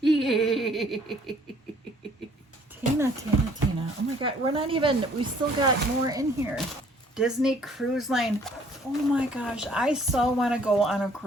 Oh my God, we still got more in here. Disney Cruise Line. Oh my gosh, I so want to go on a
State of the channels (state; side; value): normal; both; correlation 0.59